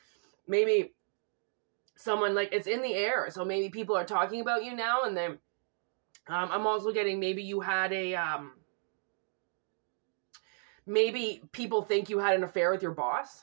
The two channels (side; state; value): left; silent; digital silence